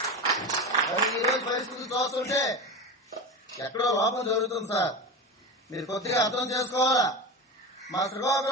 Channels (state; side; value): normal; both; correlation 0.24